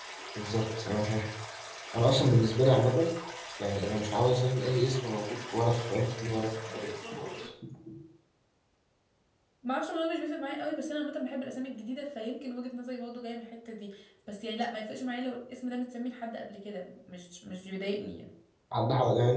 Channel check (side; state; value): both; identical; correlation 1.00